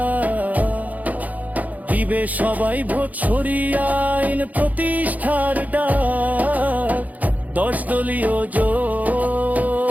দিবে সবাই ভোট, সরিয়ে আইন প্রতিষ্ঠার ডাক। 10 দলীয় জোট,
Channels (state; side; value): late; left; 0.078 ms